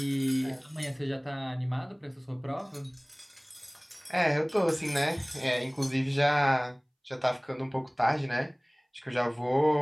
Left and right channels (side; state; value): both; identical; correlation 1.00